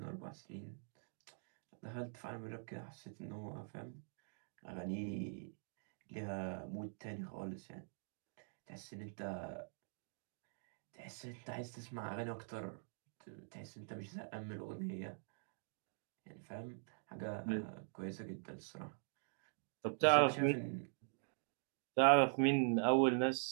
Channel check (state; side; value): silent; left; digital silence